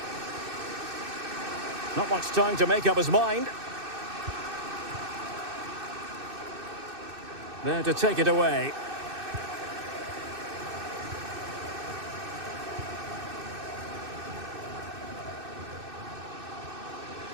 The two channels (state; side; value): late; left; 2.6 ms